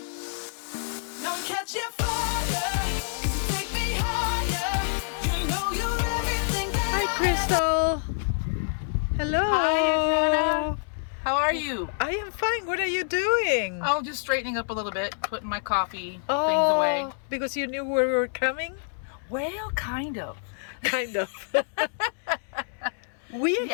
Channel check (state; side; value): silent; right; digital silence